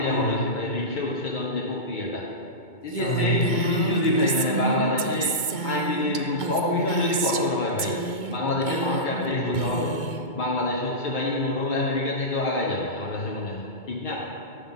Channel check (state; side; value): late; right; 2.2 ms